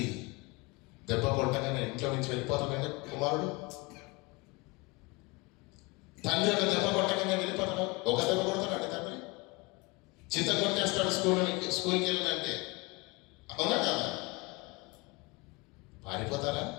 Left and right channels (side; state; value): right; quieter; 25.5 dB